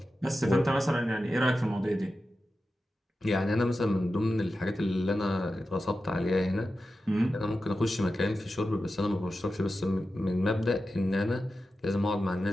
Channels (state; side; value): normal; both; correlation 0.92